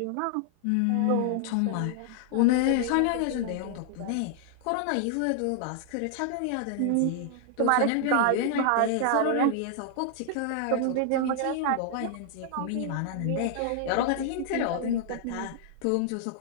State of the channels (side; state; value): both; different; correlation 0.00